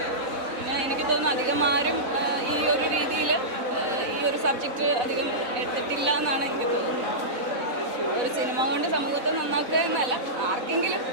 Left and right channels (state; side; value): late; left; 4.0 ms